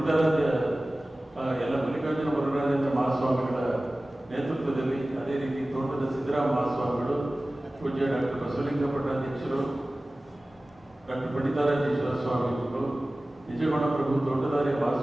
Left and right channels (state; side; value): normal; both; correlation 0.97